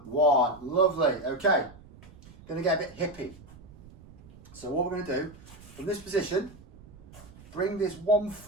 1. Lovely. Okay. Going to get a bit hippie. So what we're going to do, from this position, bring this one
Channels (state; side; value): noise; right; rumble, 20 dB below the sound